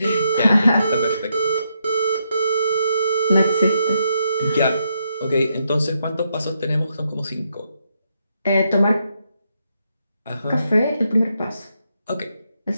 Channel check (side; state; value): both; inverted; correlation -0.80